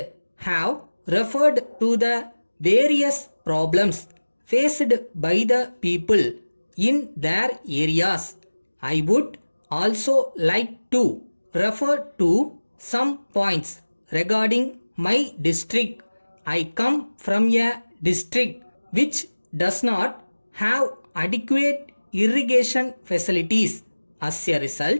have referred to the various problems faced by the people in their areas. I would also like to refer to some points regarding my district. I come from a district which does not have adequate irrigation facilities. As a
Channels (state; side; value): inverted; both; correlation -1.00